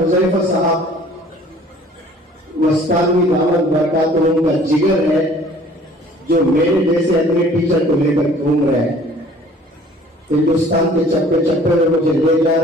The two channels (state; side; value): normal; both; correlation 0.52